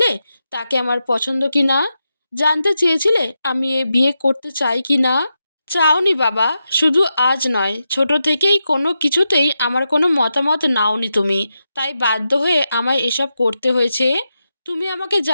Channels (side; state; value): both; inverted; correlation -0.88